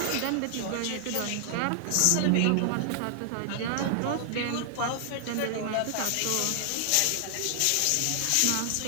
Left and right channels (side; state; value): both; different; correlation 0.00